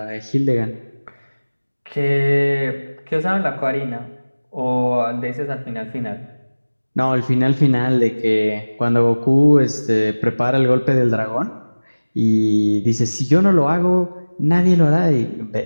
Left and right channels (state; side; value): inverted; both; correlation -1.00